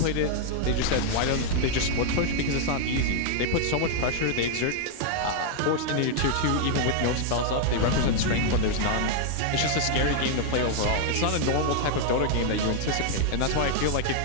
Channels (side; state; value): both; different; correlation 0.00